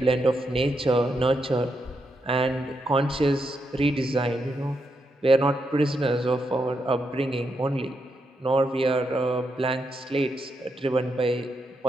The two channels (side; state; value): both; normal; correlation 0.82